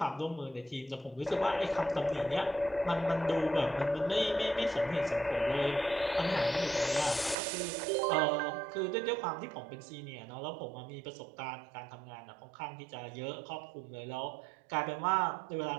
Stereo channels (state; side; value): drops out; left; at 7.4 s